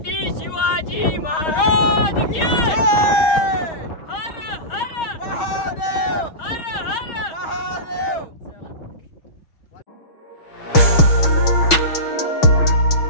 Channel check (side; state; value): right; late; 6.3 ms